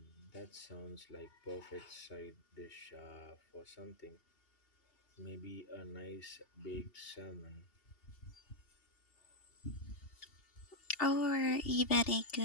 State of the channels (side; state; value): right; late; 2.8 ms